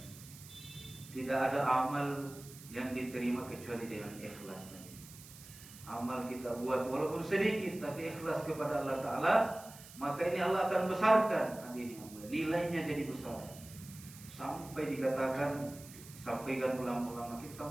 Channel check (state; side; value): noise; right; hiss, 17 dB below the sound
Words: Tidak ada amal yang diterima kecuali dengan ikhlas. Amal kita buat walaupun sedikit tapi ikhlas kepada Allah Ta'ala, maka ini Allah akan besarkan nilainya jadi besar. Sampai dikatakan, sampaikan ulama-ulama kita,